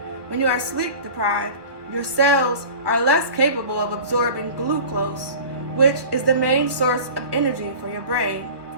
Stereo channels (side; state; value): left; late; 1.1 ms